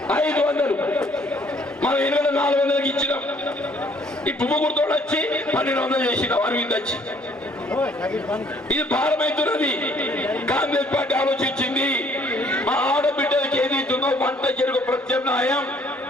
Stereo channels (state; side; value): normal; both; correlation 0.61